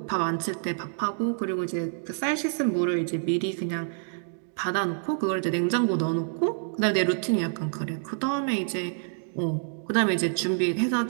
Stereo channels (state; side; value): silent; left; digital silence